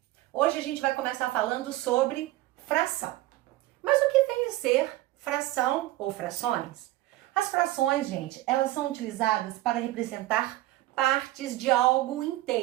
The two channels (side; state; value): left; quieter; 16.7 dB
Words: Hoje a gente vai começar falando sobre fração. Mas o que vem a ser fração ou frações? As frações, gente, elas são utilizadas para representar partes de algo